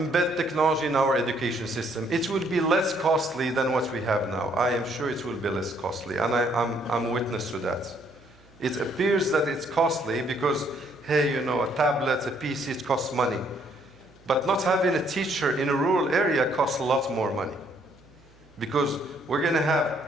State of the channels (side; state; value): right; noise; hum, 28 dB below the sound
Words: technology in our education system? It will be less costly than what we have now. I am sure it will be less costly, and I'm witness to that. It appears that it's costly because, hey, a tablet, a PC, it costs money. But not having a teacher in a rural area costs a lot more money. Because we're going to